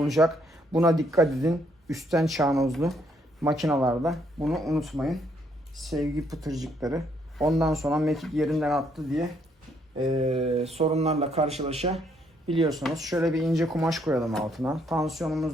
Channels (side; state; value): both; normal; correlation 0.71